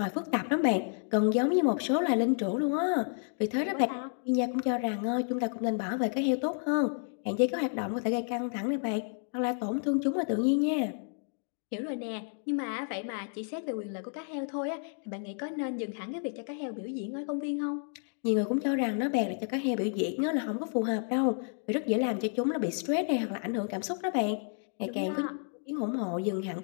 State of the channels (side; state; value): right; silent; 57 dB below the other